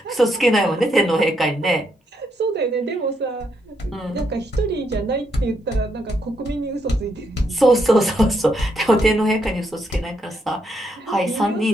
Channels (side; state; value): both; normal; correlation 0.77